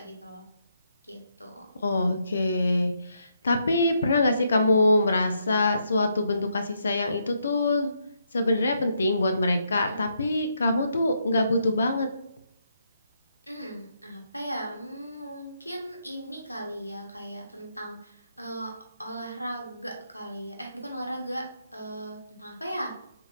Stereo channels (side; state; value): both; inverted; correlation -0.77